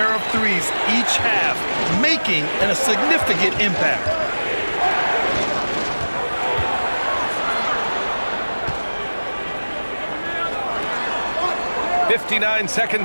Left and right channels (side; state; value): both; inverted; correlation -1.00